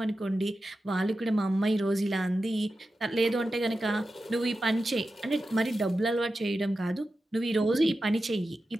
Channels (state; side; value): normal; both; correlation 0.92